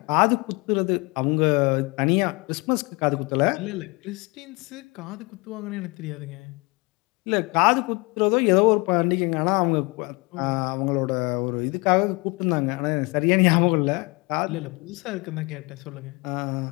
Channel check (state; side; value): quieter; right; 27.2 dB